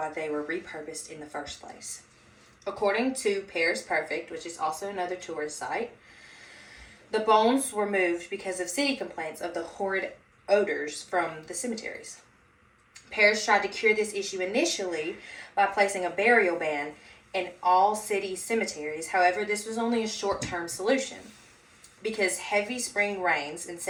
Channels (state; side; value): identical; both; correlation 1.00